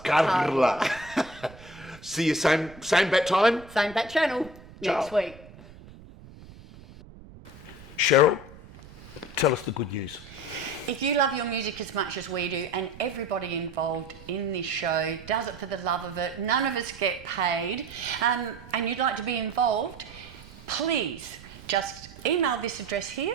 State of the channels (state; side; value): noise; right; rumble, 19 dB below the sound